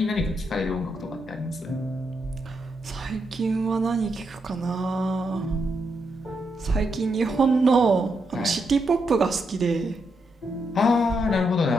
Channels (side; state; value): both; normal; correlation 0.82